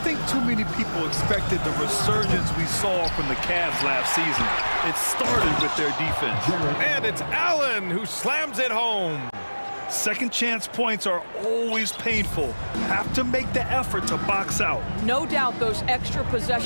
think too many people expected the resurgence we saw from the Cavs last season. It started with their defense. And it's Allen who slams it home. Second chance points are always painful. Have to make the effort to box out. No doubt those extra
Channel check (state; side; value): inverted; both; correlation -1.00